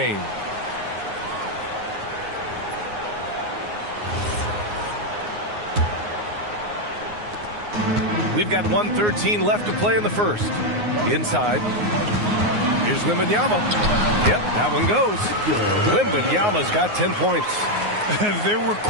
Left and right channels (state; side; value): late; left; 9.6 ms